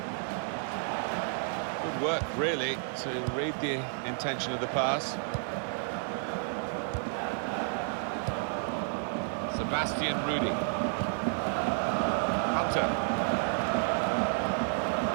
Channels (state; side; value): silent; left; 57 dB below the other